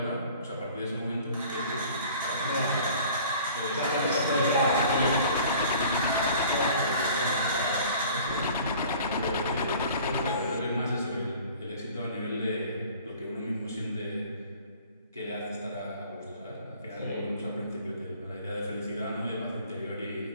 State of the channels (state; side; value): inverted; both; correlation -0.49